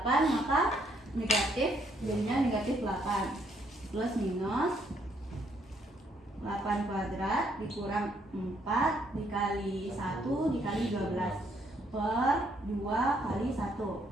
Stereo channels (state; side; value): normal; both; correlation 0.70